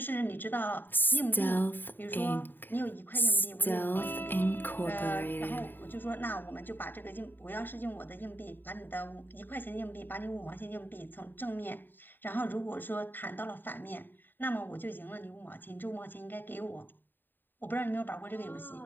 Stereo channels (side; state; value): right; late; 0.093 ms